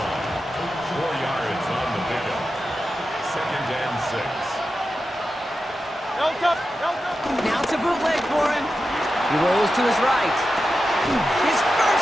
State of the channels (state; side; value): normal; both; correlation 0.91